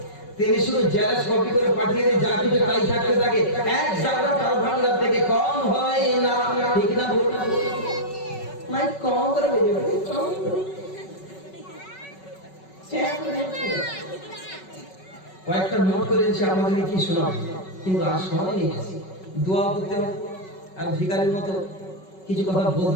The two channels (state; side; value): late; right; 5.3 ms